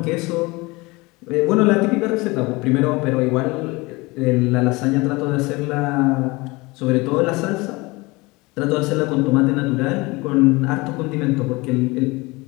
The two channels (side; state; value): right; quieter; 23.9 dB